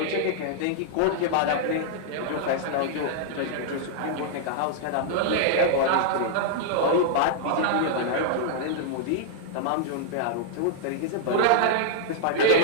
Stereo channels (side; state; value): both; different; correlation -0.01